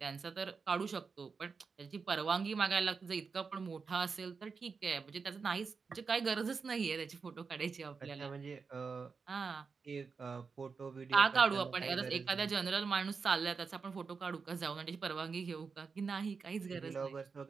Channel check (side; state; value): left; quieter; 5.1 dB